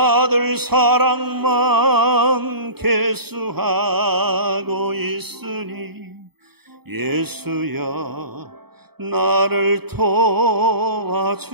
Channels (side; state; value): left; late; 0.97 ms